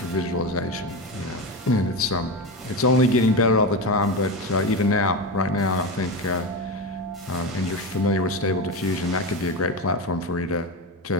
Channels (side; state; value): both; normal; correlation 0.19